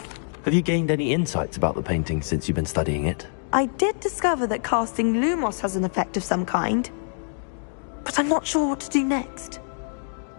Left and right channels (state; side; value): silent; right; digital silence